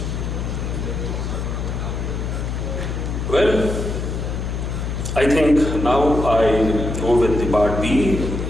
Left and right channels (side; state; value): left; noise; hum, 3 dB below the sound